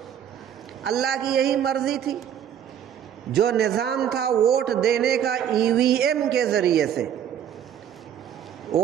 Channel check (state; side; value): quieter; left; 9.4 dB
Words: اللہ کی یہی مرضی تھی۔ جو نظام تھا ووٹ دینے کا ای وی ایم کے ذریعے سے،